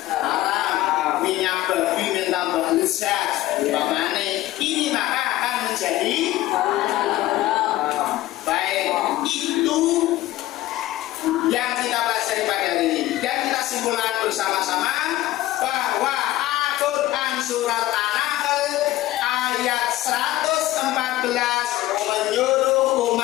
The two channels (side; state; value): right; quieter; 16.0 dB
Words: haram, minyak babi mentambah lezat, umpamane ini maka akan menjadi baik. Itu yang kita pelajari pada hari ini, dan kita simpulkan bersama-sama bahwa Al-Quran surat An-Nahl ayat 114 menyuruh